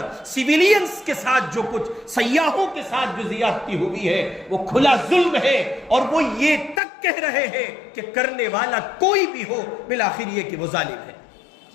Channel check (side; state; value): right; drops out; at 6.8 s